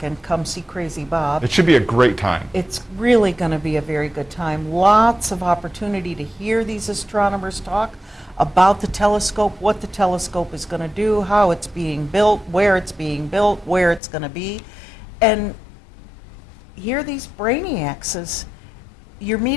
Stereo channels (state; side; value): drops out; right; at 14.0 s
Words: Come see Crazy Bob. it should be a great time. It's really going to be a very good time. Lots of opportunity to hear these astronomers talk about the telescope, what the telescope is going to do, how it's being built, where it's going to be, and hear these brainiacs as you're